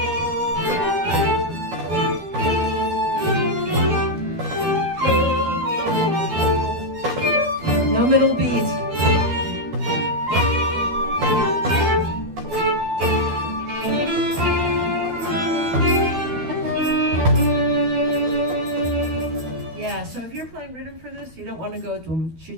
No middle beat. You don't want to go dum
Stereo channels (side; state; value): left; late; 12 ms